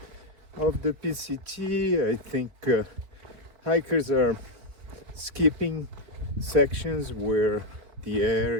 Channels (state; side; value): late; left; 4.7 ms